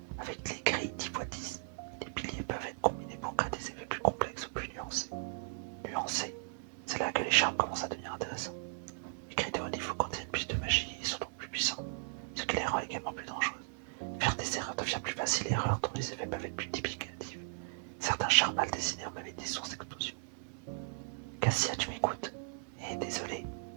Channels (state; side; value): silent; left; digital silence